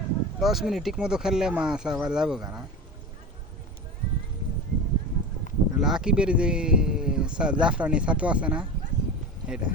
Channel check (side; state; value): both; normal; correlation 0.28